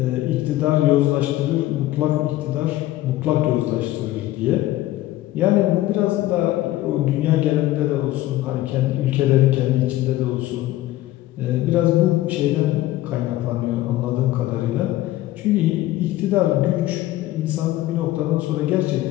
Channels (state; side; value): quieter; right; 15.6 dB